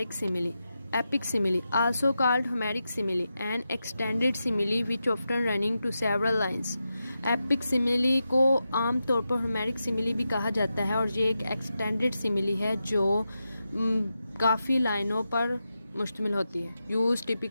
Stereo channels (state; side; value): inverted; both; correlation -0.89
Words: simile. Epic simile, also called Homeric simile, an extended simile which often running to several lines. Epic simile को आम तौर पर Homeric simile भी कहा जाता है, और ये एक एक्सटेंडेड सिमिली है जो काफ़ी लाइनों पर मुश्तमिल होती है. Use